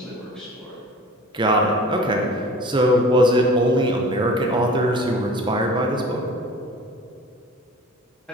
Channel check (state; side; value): normal; both; correlation 0.42